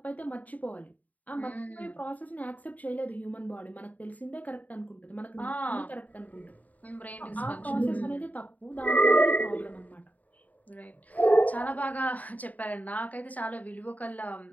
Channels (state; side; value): late; right; 0.075 ms